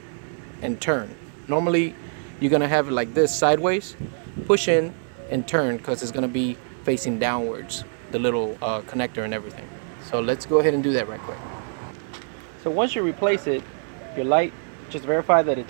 and turn. Normally you're gonna have it like this, sideways, push in and turn, because it's gonna be facing downwards, the little connector and everything. So let's go ahead and do that right quick. So once you replace it, your light, just verify that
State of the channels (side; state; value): left; silent; 62 dB below the other